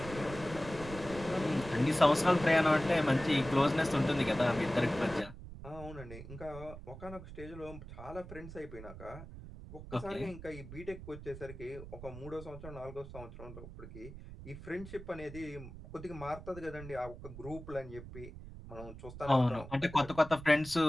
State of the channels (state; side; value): noise; right; rumble, 13 dB below the sound